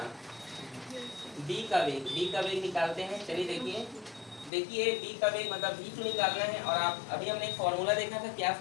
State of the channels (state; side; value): drops out; right; at 4.5 s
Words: b का वेग निकालते हैं, चलिए देखिए b का वेग मतलब v2 निकालना है। और आप अभी हमने एक फॉर्मूला देखा था, क्या